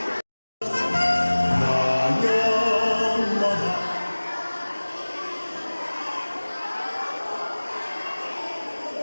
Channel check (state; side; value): inverted; both; correlation -1.00